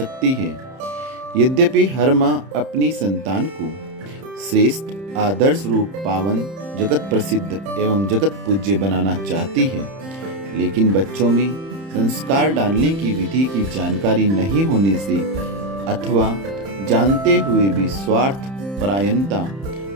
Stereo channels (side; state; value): left; late; 31 ms